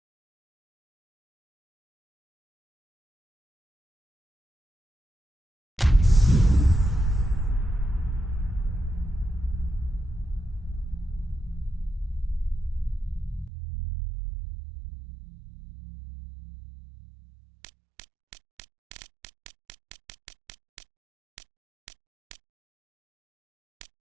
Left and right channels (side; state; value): left; drops out; at 13.5 s